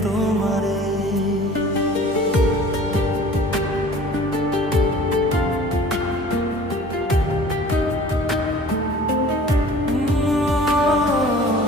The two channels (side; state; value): both; normal; correlation 0.47